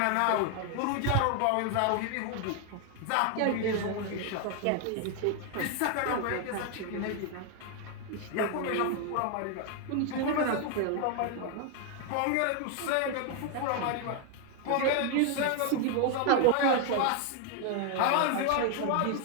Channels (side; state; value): both; different; correlation 0.01